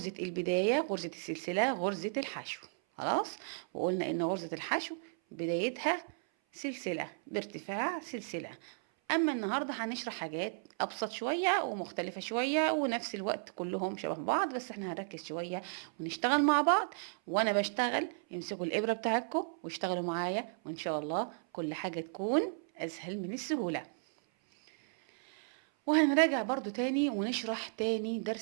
البداية، غرزة السلسلة، غرزة الحشو. خلاص، وقلنا إن غرزة الحشو بدايتها سلسلة بارتفاع سلسلة. اما النهارده هنشرح حاجات ابسط شويه ومختلفه شويه ونفس الوقت كلهم شبه بعض، بس احنا هنركز شويه ونشتغل مع بعض. وانا بشتغل امسكوا الابره بتاعتكم واشتغلوا معايا، وان شاء الله كل حاجه تكون اسهل من السهوله. وهنراجع برضو تاني ونشرح تاني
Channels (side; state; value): left; silent; 55 dB below the other